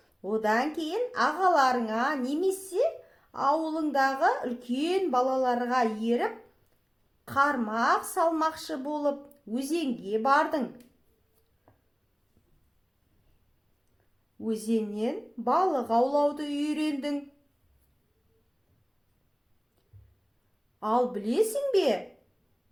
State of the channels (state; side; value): identical; both; correlation 1.00